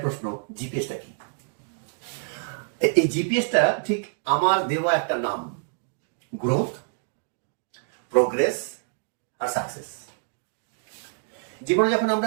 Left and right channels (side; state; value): left; silent; 60 dB below the other